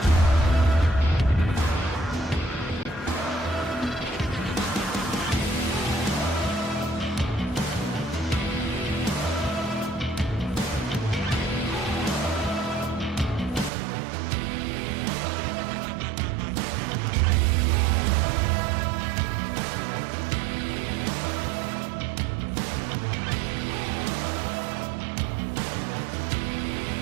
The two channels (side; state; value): left; drops out; at 13.7 s